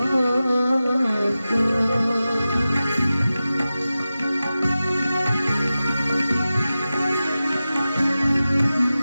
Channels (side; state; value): both; inverted; correlation -0.94